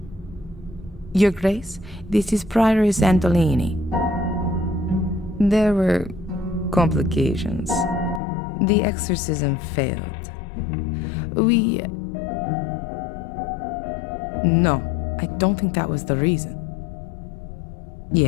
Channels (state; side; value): drops out; right; at 8.2 s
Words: Your Grace, this is Prioress Antolini. There were complications. The exorcism failed. No, I don't think that was the reason.